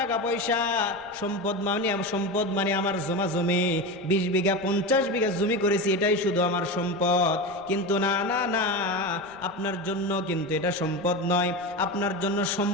পয়সা, সম্পদ মানে আমার জমা জমি, 20 বিঘা 50 বিঘা জমি করেছি, এটাই শুধু আমার সম্পদ। কিন্তু না না না, আপনার জন্য কিন্তু এটা সম্পদ নয়। আপনার জন্য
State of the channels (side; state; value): right; noise; rumble, 26 dB below the sound